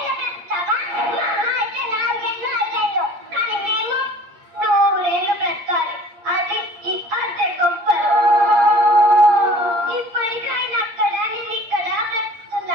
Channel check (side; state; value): left; late; 8.5 ms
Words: పెడతావా? మా అమ్మ అయితే 4 ఏళ్ళు అయ్యాయో, కానీ మేము 100 ఏళ్ళు బ్రతకాలి. అది ఈ అద్దె గొప్పలు. ఇప్పటికైనా అక్కడ నేను ఇక్కడ